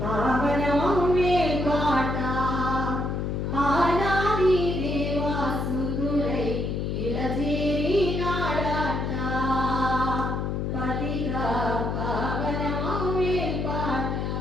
పావనమే పాట ఆనాది దేవాసుతులై ఇలజేరి నాడాట. పదిగా పావనమే పాట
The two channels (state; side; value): noise; left; hum, 1 dB below the sound